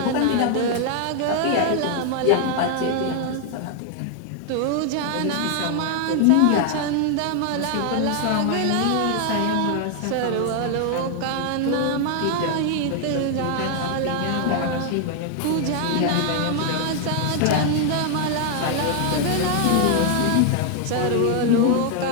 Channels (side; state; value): both; different; correlation 0.00